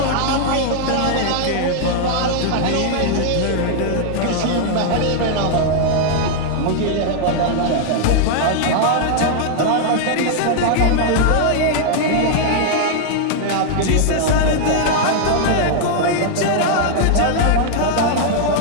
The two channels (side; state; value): both; different; correlation -0.01